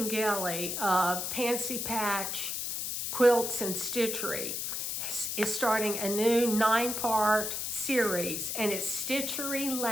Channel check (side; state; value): left; noise; hiss, 3 dB below the sound